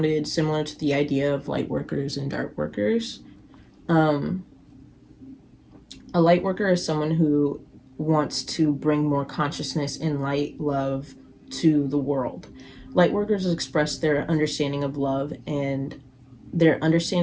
similar to the idea of light workers and dark workers. Um, a light worker is someone who wants to bring more consciousness and light love to the world. Light workers express their understanding of love and their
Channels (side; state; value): both; identical; correlation 1.00